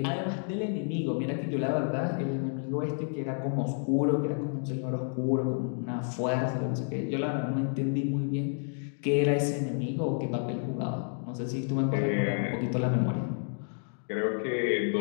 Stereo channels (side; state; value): right; silent; 58 dB below the other